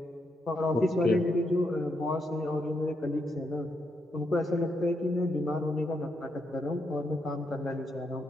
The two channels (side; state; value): both; normal; correlation 0.80